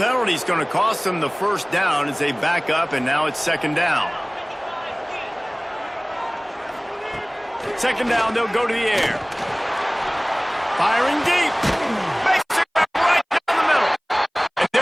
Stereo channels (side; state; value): both; identical; correlation 1.00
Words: is going to cost them the first down as they back up, and now it's second down. Second down, they'll go to the air. Firing deep. Makes it right down the middle. And